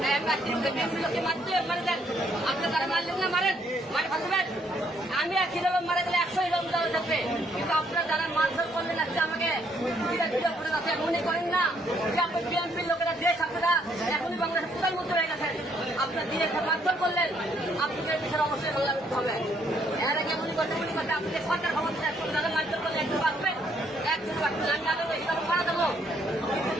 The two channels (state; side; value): normal; both; correlation 0.69